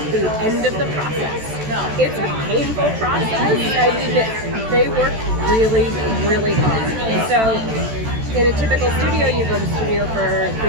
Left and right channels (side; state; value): left; late; 14 ms